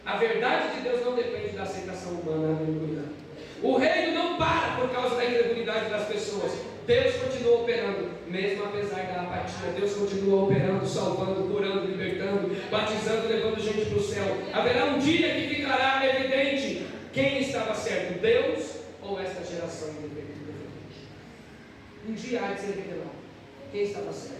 A verdade de Deus não depende da aceitação humana. Aleluia. O reino não para por causa da incredulidade das pessoas. Deus continua operando, mesmo apesar da apatia. Deus continua operando, salvando, curando, libertando, batizando, levando gente para o céu. Haverá um dia que ficará evidente quem estava certo, Deus ou esta geração independente. Um dia há de ser revelado quem estava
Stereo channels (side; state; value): both; identical; correlation 1.00